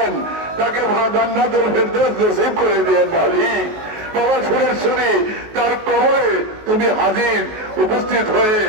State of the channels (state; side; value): late; left; 19 ms